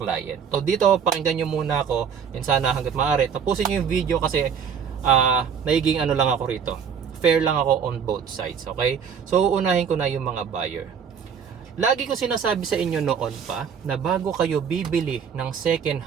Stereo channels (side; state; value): left; quieter; 7.2 dB